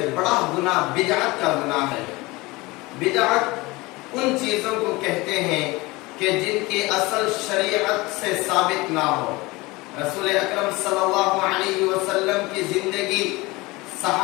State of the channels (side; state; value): right; quieter; 22.4 dB